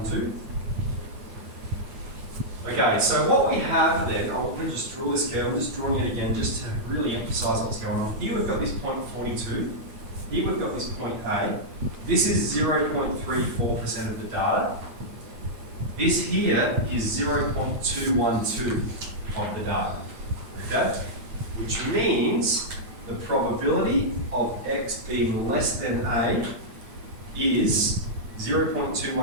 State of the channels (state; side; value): late; left; 9.0 ms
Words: Okay, so what we have then, I'm going to just draw this curve, I'm just drawing it again just to really emphasise what's going on. Here we've got this point 42, here we've got this point A. This is 0.34% of the data. This here is 0.212 of the data, okay? Which means the probability of x being less than A is